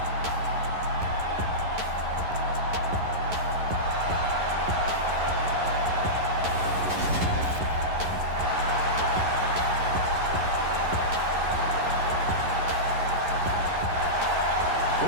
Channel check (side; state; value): left; late; 11 ms